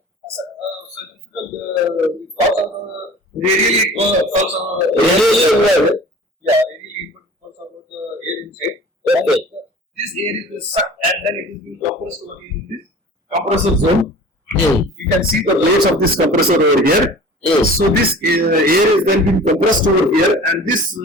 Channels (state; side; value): normal; both; correlation 0.43